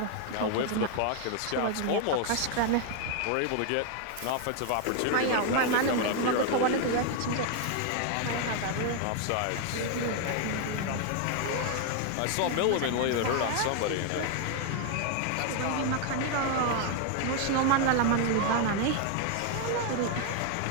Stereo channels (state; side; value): different; both; correlation 0.00